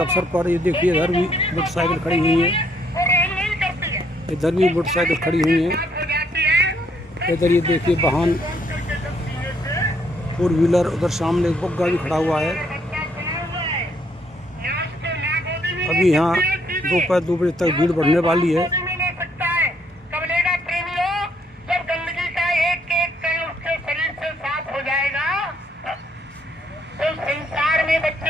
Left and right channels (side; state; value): both; normal; correlation 0.70